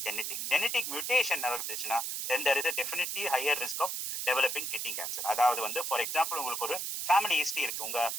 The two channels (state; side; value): noise; right; hiss, 3 dB below the sound